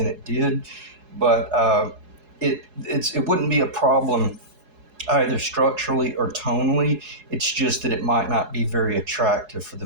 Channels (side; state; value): left; late; 4.7 ms